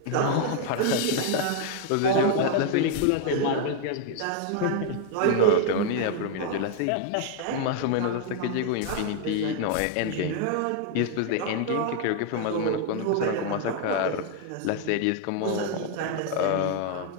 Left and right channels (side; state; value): both; different; correlation 0.00